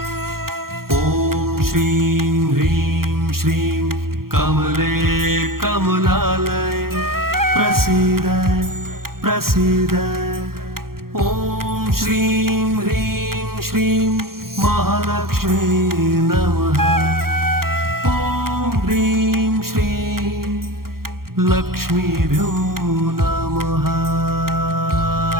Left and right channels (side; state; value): left; late; 0.93 ms